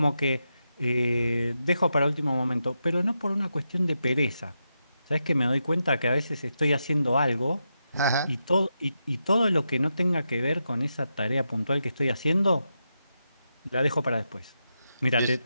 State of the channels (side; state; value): both; inverted; correlation -0.87